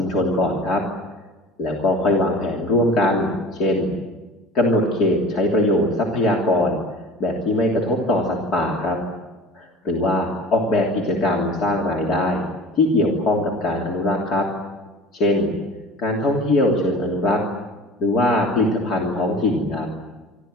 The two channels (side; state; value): both; normal; correlation 0.40